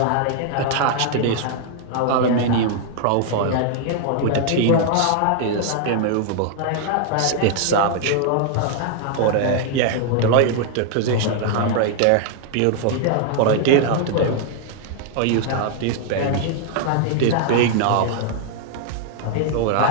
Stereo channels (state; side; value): different; both; correlation 0.00